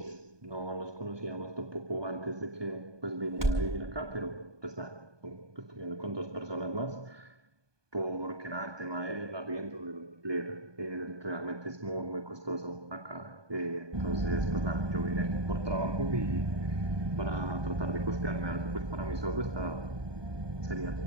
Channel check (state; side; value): late; left; 1.2 ms